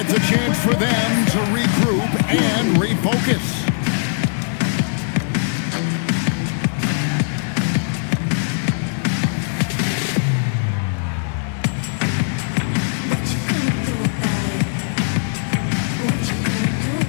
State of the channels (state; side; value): silent; right; digital silence